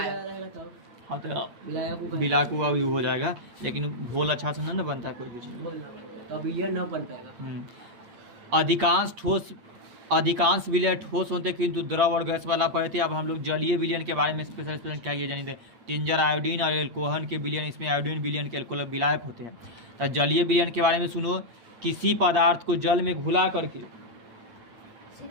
हाँ, तो विलायक हो जाएगा, लेकिन घोल अच्छा से नहीं बनता है कोई कुछ, विलयन न बन पाएगा। अधिकांश विलय ठोस होते हैं, किंतु द्रव और गैस वाला पढ़े थे। अब हम लोग जलीय विलयन के बारे में स्पेशल क्या ये जानिए, टिंजर आयोडीन और एल्कोहल के विलयन, इसमें आयोडीन विलयन के एल्कोहल विलायक होते हैं। तो जलीय विलयन के बारे में सुनो, किसी पदार्थ को जल में घुला करके,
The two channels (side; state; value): left; late; 8.6 ms